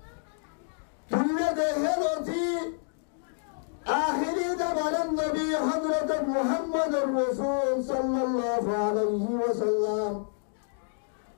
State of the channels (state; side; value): silent; right; digital silence